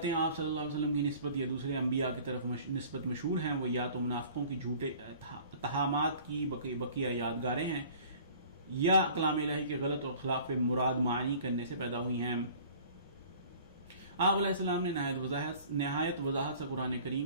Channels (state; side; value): inverted; both; correlation -0.49